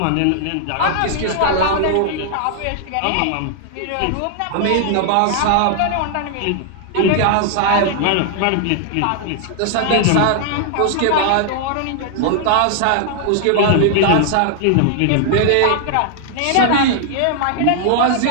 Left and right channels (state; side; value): different; both; correlation 0.00